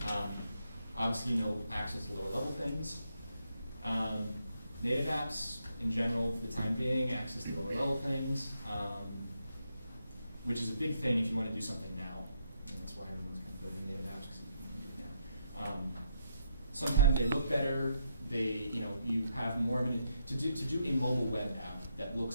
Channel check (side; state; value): both; inverted; correlation -0.78